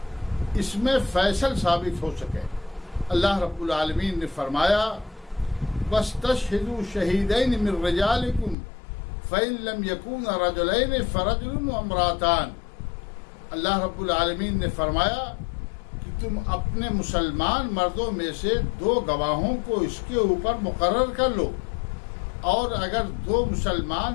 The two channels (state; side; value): drops out; right; at 8.6 s